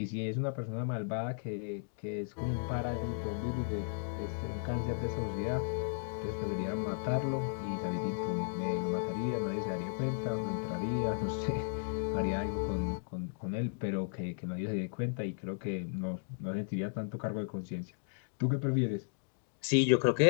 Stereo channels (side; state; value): right; silent; digital silence